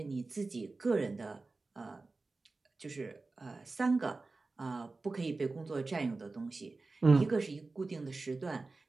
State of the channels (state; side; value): quieter; left; 3.6 dB